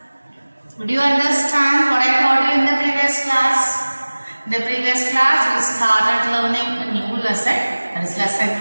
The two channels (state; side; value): inverted; both; correlation -1.00